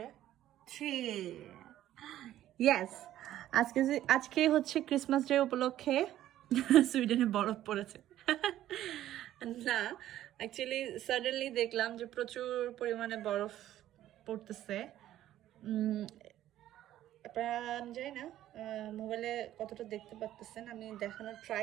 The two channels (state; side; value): quieter; left; 12.9 dB